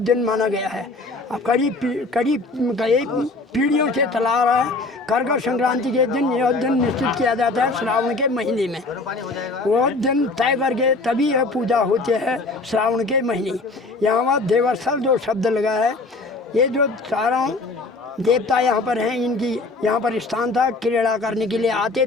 माना गया है। अब कई पीढ़ियों से चला आ रहा है। कर्कट संक्रांति के दिन यह दिन निश्चित किया जाता है श्रावण के महीने में। वह दिन तय करके तभी यह पूजा होती है श्रावण के महीने। यहाँ पर देवस्थल जो शब्द लगा है, ये जो चारों देवता यहाँ पर हैं, इनकी यहाँ पर स्थान था। क्रीड़ा करने के लिए आते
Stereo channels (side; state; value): right; quieter; 3.3 dB